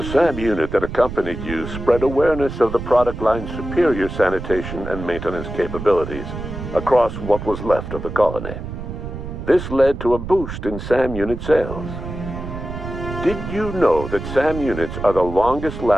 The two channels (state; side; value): noise; right; rumble, 8 dB below the sound